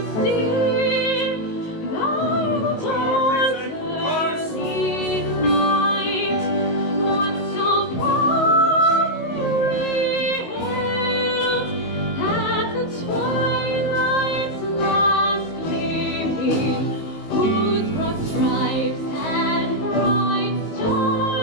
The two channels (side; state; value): right; late; 19 ms